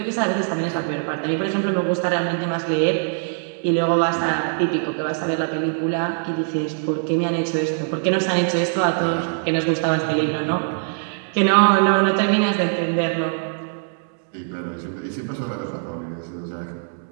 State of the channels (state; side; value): silent; left; digital silence